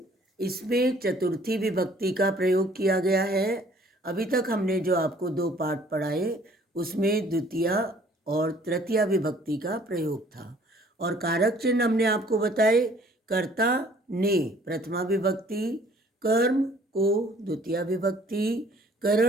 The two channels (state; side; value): normal; both; correlation 0.57